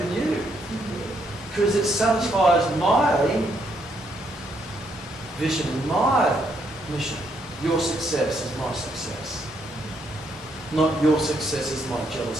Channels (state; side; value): normal; both; correlation 0.74